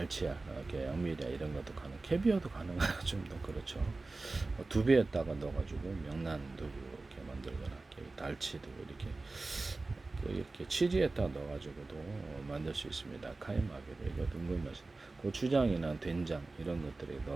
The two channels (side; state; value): left; quieter; 3.4 dB